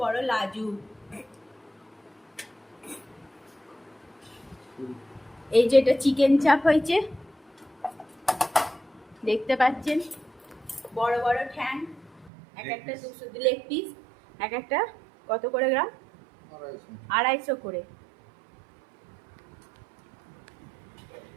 বড় লাজু। এই যে এটা চিকেন চাপ হয়েছে, দেখতে পাচ্ছেন। বড় বড় ঠ্যাং, এক একটা 200 লেগ পিস, এক একটা কত করে গ্রাম? 250 করে।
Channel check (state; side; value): drops out; left; at 12.3 s